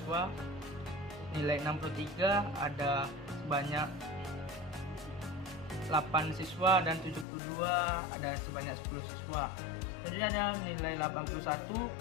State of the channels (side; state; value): right; drops out; at 7.2 s